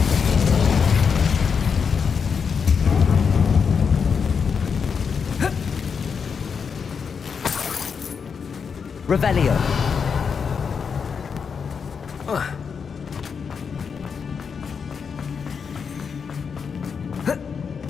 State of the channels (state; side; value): quieter; right; 6.1 dB